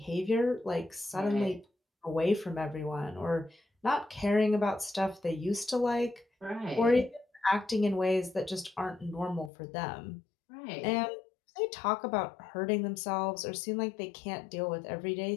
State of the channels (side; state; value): right; drops out; at 9.5 s